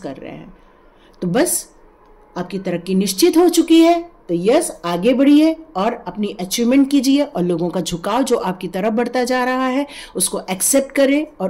रहे हैं। तो बस आपकी तरक्की निश्चित हो चुकी है। तो यस, आगे बढ़िए और अपनी अचीवमेंट कीजिए, और लोगों का झुकाव जो आपकी तरफ बढ़ता जा रहा है उसको एक्सेप्ट करें और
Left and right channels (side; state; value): both; identical; correlation 1.00